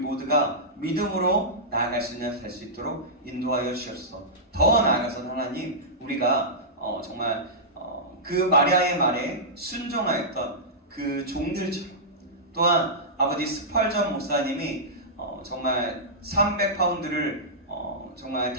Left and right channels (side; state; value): both; normal; correlation -0.14